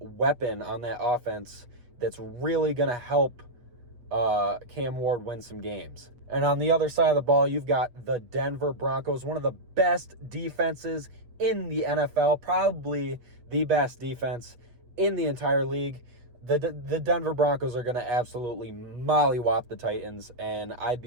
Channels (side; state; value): left; late; 8.3 ms